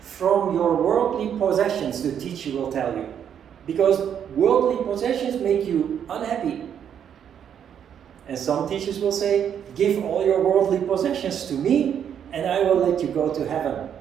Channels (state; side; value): quieter; left; 8.7 dB